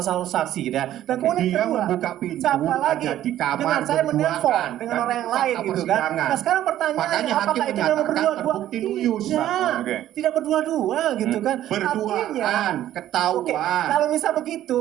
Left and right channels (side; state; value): left; quieter; 12.6 dB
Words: satu saksi gitu ya. Dan kemudian Dia kedua, membuka pintu, siapa lagi? ada di kamar dengan saya berduaan. menelpon dengan Dan orang yang fakta lain gitu kan. persidangan. Nah sekarang pertanyaannya Makanya hakim apakah itu memang menyatakan berdua-dua? terbukti luyus. Tidak, Oke. tidak berdua-dua gitu kan. Berduaan, Artinya, ketahuan. oke, kalau misal begitu,